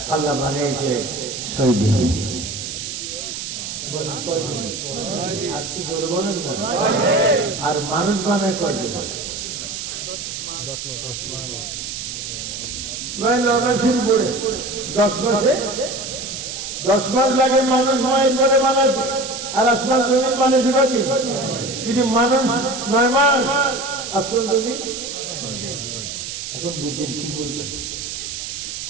আল্লাহ বানিয়েছে 6 দিনে। আর তো জোর বলেন না। আর মানুষ বানায় কয় দিন? 10 মাস। প্রায় 9 মাসের উপরে। 10 মাসে 10 মাস লাগে মানুষ মায়ের পরে বানাতে। আর আসমান জমিন বানিয়েছে কয়দিন? যদি মানুষ 9 মাস, আসমান জমিন। এখন বুঝেন কি বলবেন?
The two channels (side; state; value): right; noise; hiss, 7 dB below the sound